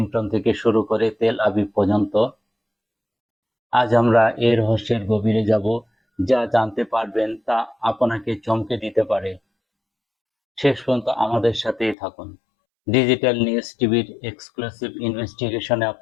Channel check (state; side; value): drops out; right; at 12.0 s